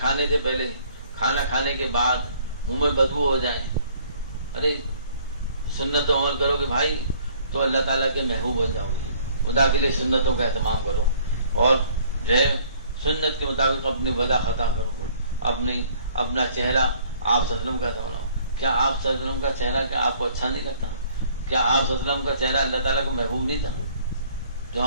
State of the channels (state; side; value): inverted; both; correlation -0.58